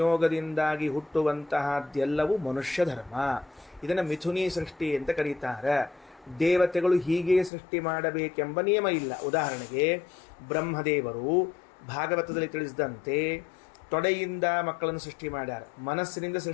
ಹುಟ್ಟುವಂತಹದ್ದೆಲ್ಲವೂ ಮನುಷ್ಯ ಧರ್ಮ. ಇದನ್ನು ಮಿಥುನಿ ಸೃಷ್ಟಿ ಅಂತ ಕರೀತಾರೆ. ದೇವತೆಗಳು ಹೀಗೆ ಸೃಷ್ಟಿ ಮಾಡಬೇಕೆಂಬ ನಿಯಮ ಇಲ್ಲ. ಉದಾಹರಣೆಗೆ ಬ್ರಹ್ಮದೇವರು ಭಾಗವತದಲ್ಲಿ ತಿಳಿಸಿದಂತೆ ತೊಡೆಯಿಂದ ಮಕ್ಕಳನ್ನು ಸೃಷ್ಟಿ ಮಾಡ್ಯಾರ, ಮನಸ್ಸಿನಿಂದ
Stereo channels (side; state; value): right; drops out; at 7.5 s